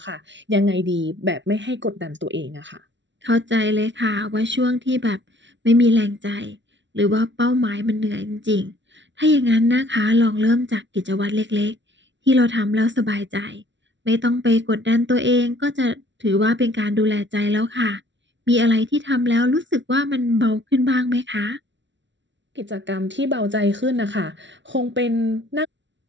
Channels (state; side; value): late; left; 0.53 ms